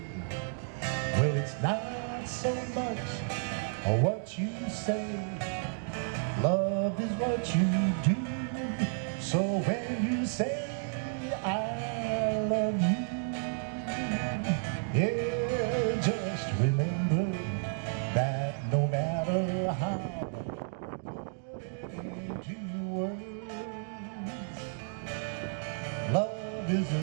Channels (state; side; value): silent; left; 56 dB below the other